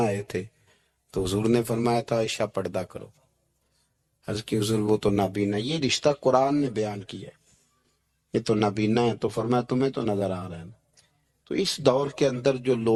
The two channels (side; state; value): both; identical; correlation 1.00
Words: تھے تو حضور نے فرمایا تھا عائشہ پردہ کرو۔ عرض کی حضور وہ تو نابینا، یہ رشتہ قرآن نے بیان کیا ہے، یہ تو نابینا ہے، تو فرمایا تمہیں تو نظر آ رہا ہے نا۔ تو اس دور کے اندر جو